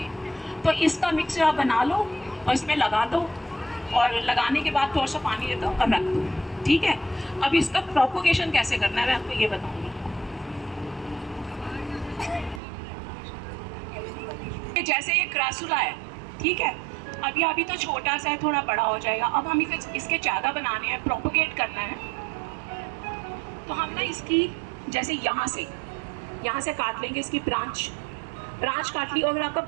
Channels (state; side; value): drops out; left; at 12.6 s